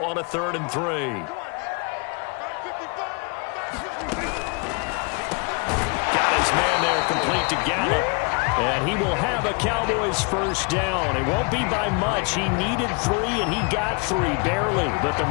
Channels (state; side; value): quieter; right; 33.3 dB